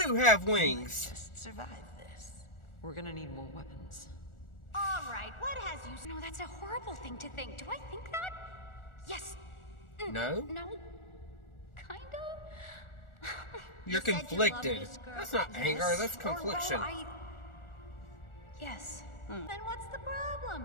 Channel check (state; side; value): late; right; 1.4 ms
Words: have wings. Just survive this. We're gonna need more weapons. All right, what has you... No, that's a horrible thing to think. Do I think that? Yes. No? No. Kinda? You're You said you loved conflicted. this girl. That's not Yes. anger. That's Or, well, confliction. Yes. Then what's the problem?